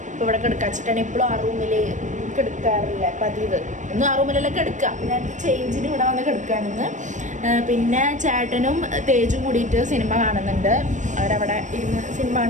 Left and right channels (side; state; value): left; late; 0.36 ms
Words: ഇപ്പോൾ ഇവിടെ കിടക്കാച്ചിട്ടാണ്. ഇപ്പോഴും ആ റൂമിൽ കിടക്കാറില്ല പതിവ്. ഇന്നും ആ റൂമിലല്ല കിടക്കുക. ഞാൻ ചേഞ്ചിന് ഇവിടെ വന്ന് കിടക്കുകയാണെന്ന്. പിന്നെ ചേട്ടനും തേജും കൂടിയിട്ട് സിനിമ കാണുന്നുണ്ട്. അവരവിടെ ഇരുന്ന് സിനിമ